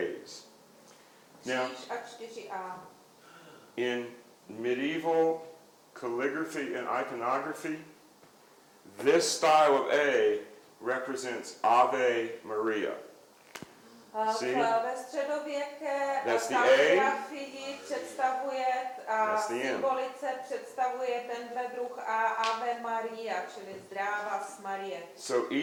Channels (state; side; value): identical; both; correlation 1.00